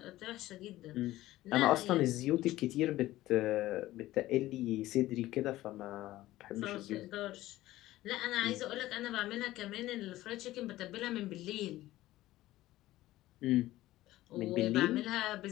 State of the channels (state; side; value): quieter; right; 16.1 dB